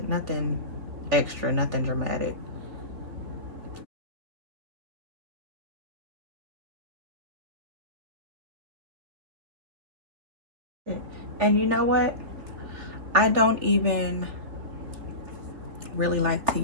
Nothing extra, nothing dramatic. And you know what? I don't even really like to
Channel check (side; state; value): left; late; 3.4 ms